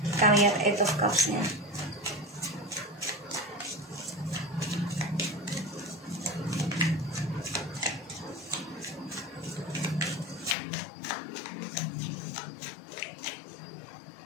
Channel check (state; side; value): drops out; right; at 10.6 s